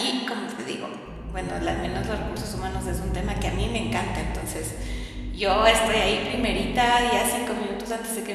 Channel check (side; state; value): both; identical; correlation 1.00